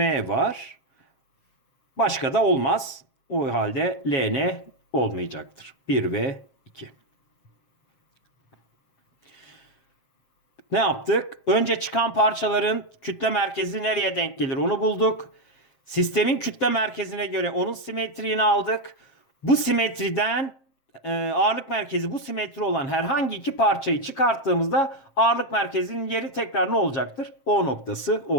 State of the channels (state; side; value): late; right; 7.6 ms